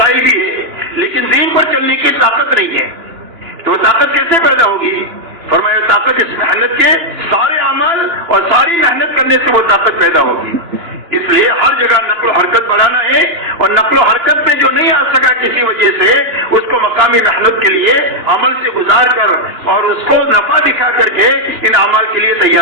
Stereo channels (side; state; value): left; late; 2.9 ms